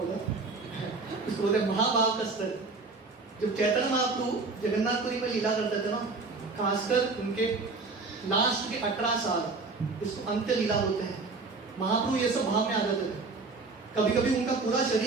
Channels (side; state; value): left; quieter; 3.9 dB